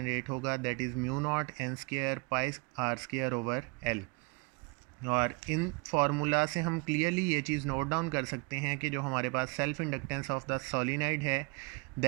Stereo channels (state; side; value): quieter; left; 30.0 dB